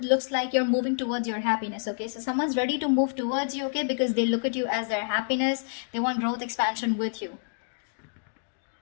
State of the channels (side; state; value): right; silent; digital silence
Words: like you're moving towards your happiness, okay? So someone's ready to move towards you, okay? Because they look at you as their happiness. They want growth, expansion with you.